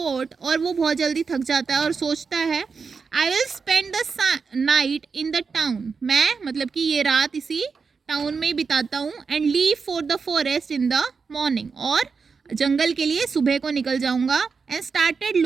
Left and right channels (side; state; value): left; quieter; 5.2 dB